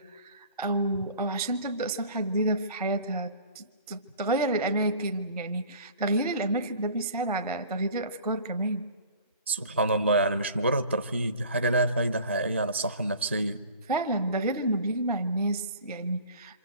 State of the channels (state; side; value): inverted; both; correlation -0.45